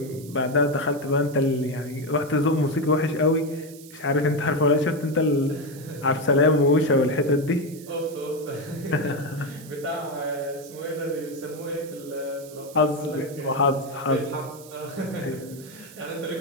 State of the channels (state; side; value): noise; right; hiss, 19 dB below the sound